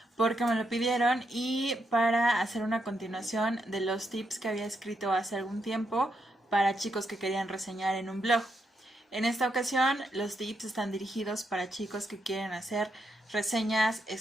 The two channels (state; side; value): normal; both; correlation 0.81